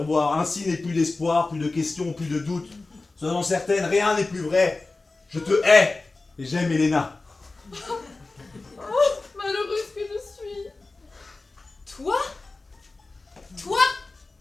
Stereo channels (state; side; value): quieter; right; 3.4 dB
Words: Ainsi n'est plus d'espoir, plus de questions, plus de doutes. Sois-en certaine, rien n'est plus vrai. Je te hais. Et j'aime Helena. Malheureuse que je suis. Toi? Toi?